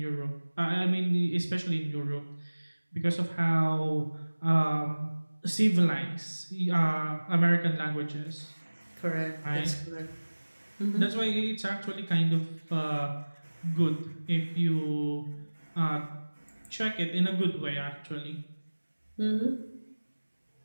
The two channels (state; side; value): inverted; both; correlation -1.00